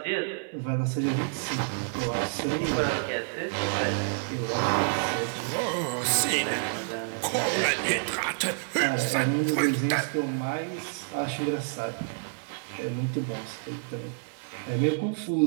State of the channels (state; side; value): silent; left; digital silence